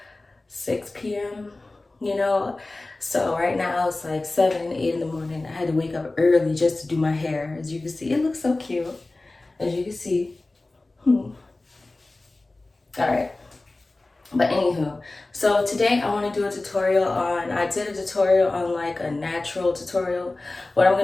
6 p.m. You know, so right now it's like 7, 8 in the morning. I had to wake up early just to do my hair. As you can see, it looks so cute. As you can see. All right. But anywho, so today I want to do a tutorial on, I did a tutorial on like a natural tutorial. What I'm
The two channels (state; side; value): quieter; right; 3.0 dB